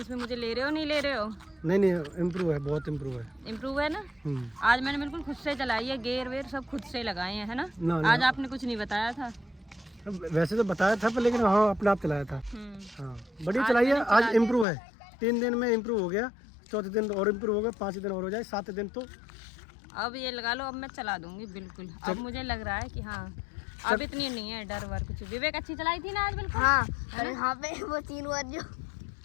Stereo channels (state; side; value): drops out; right; at 14.7 s